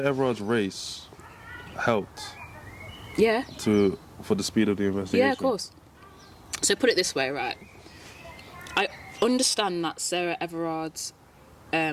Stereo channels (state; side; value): identical; both; correlation 1.00